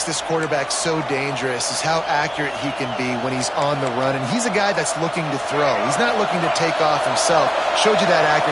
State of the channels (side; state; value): both; identical; correlation 1.00